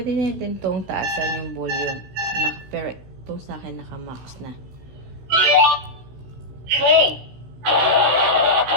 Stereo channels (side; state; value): left; late; 16 ms